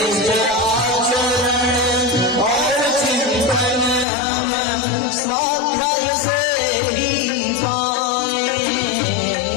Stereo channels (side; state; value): right; drops out; at 4.0 s